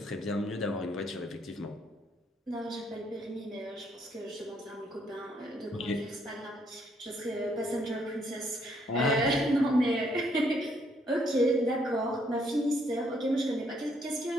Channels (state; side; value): normal; both; correlation 0.70